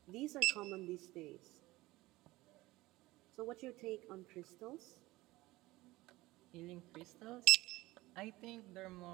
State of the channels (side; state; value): left; quieter; 19.2 dB